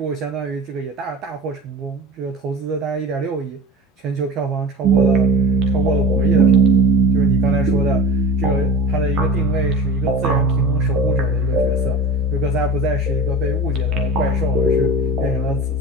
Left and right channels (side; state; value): both; normal; correlation 0.34